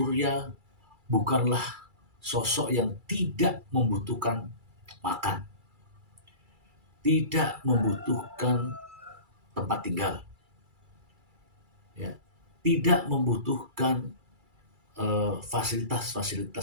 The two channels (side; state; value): left; late; 2.3 ms